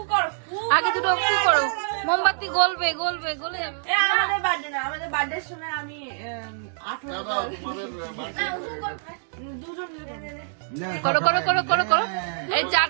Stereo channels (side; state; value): left; silent; digital silence